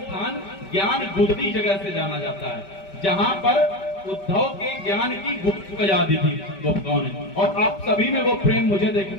ज्ञान गुदरी जगह से जाना जाता है, जहां पर उद्धव के ज्ञान की गुप्त आजादी थी गोपिकाओं ने। और आप सभी में वो प्रेम मुझे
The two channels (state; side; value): late; right; 5.1 ms